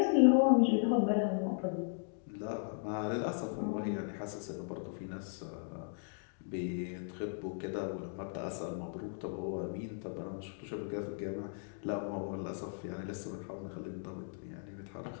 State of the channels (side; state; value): right; silent; digital silence